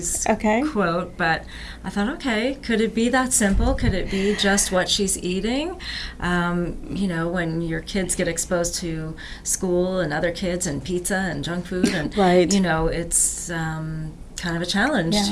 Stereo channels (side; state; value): both; identical; correlation 1.00